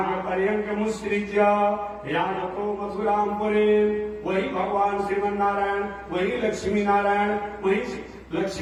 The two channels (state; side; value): identical; both; correlation 1.00